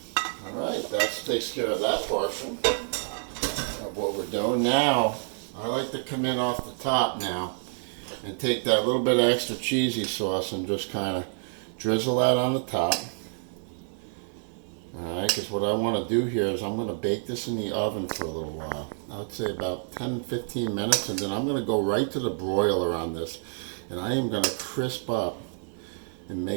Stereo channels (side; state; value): left; silent; 59 dB below the other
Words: All right, that takes care of that portion of what we're doing. Now, I like to come in off the top now and take that little bit of extra cheesy sauce and just kind of drizzle that on the top. Alright, because what I want to do here is I'm going to bake this in the oven for a little while. I'd say about 10-15 minutes, and then I'm going to go right to the broiler on this. And I am going to crisp up and